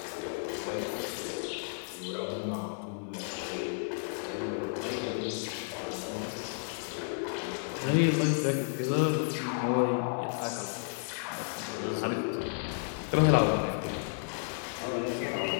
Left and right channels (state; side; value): silent; right; 56 dB below the other